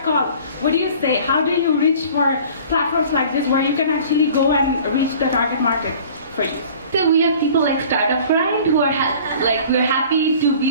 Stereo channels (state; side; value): inverted; both; correlation -0.47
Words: call, what do you say? How do you reach for platforms like this where you can actually go and reach the target market for you? So we have people like Startup Grind who are we're happy to